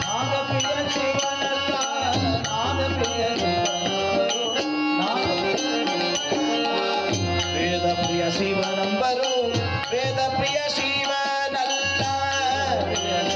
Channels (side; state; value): both; identical; correlation 1.00